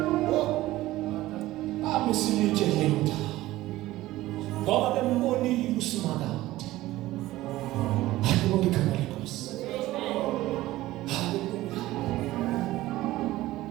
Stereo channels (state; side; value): quieter; left; 16.7 dB